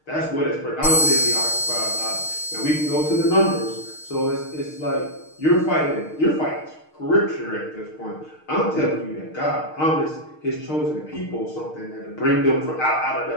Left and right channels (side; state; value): right; late; 6.5 ms